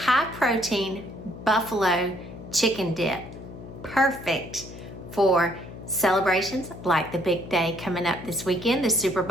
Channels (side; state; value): left; noise; hum, 14 dB below the sound